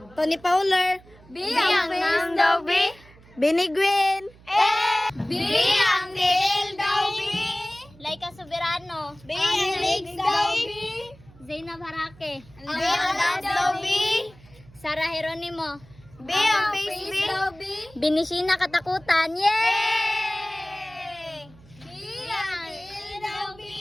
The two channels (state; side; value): noise; right; hum, 24 dB below the sound